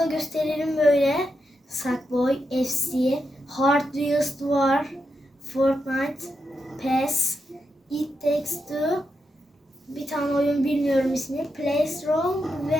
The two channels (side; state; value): both; normal; correlation 0.85